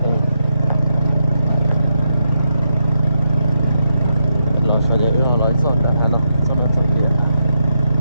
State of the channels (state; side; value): inverted; both; correlation -0.83